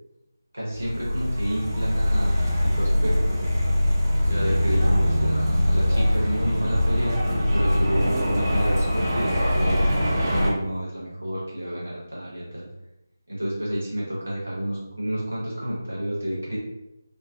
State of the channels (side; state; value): both; inverted; correlation -0.96